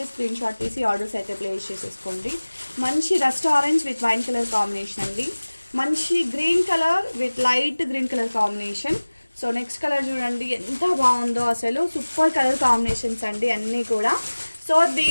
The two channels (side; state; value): both; inverted; correlation -1.00